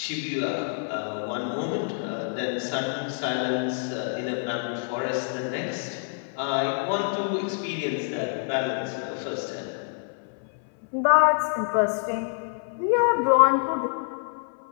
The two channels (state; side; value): silent; right; 58 dB below the other